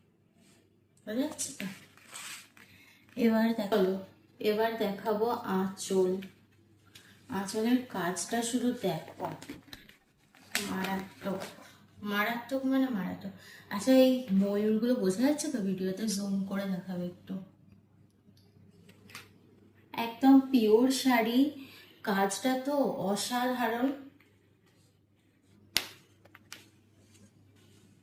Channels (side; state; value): both; identical; correlation 1.00